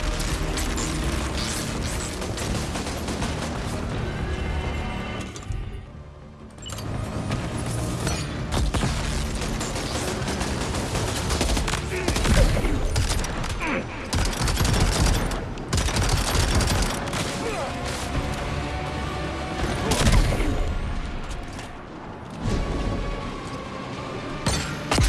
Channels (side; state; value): both; identical; correlation 1.00